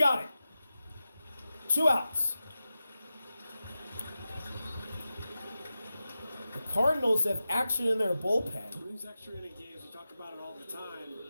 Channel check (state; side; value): inverted; both; correlation -0.93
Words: it. 2 outs. The Cardinals have action in their bullpen. These extra inning games, we talk about it all the time.